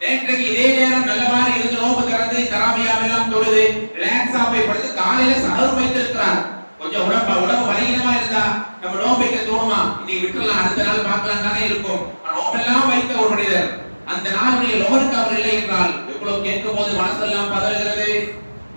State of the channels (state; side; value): inverted; both; correlation -1.00